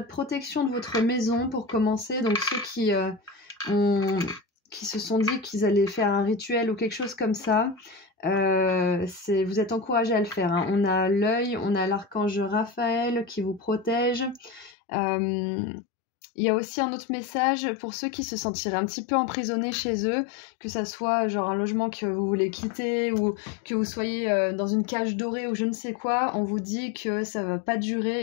protection de votre maison pour commencer. Donc ceux qui se sont dit qu'ils allaient faire un rituel ou quelque chose comme ça, vous êtes encouragés à le faire. Hein. On a l'œil, on a l'archange Raphaël qui vous protège. Il y a aussi un autre message pour ceux qui se sentiraient un petit peu emprisonnés chez eux, que ça soit genre un logement que vous voulez quitter ou que vous soyez dans une cage dorée ou je ne sais quoi. On vous dit que ça va pas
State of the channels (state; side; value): drops out; right; at 14.8 s